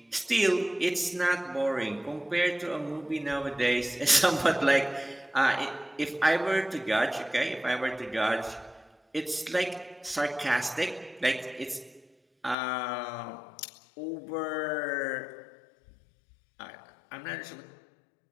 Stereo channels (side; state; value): right; drops out; at 12.6 s